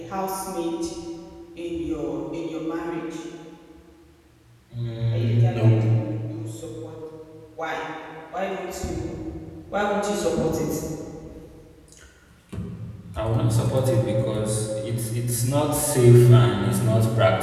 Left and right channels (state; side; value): identical; both; correlation 1.00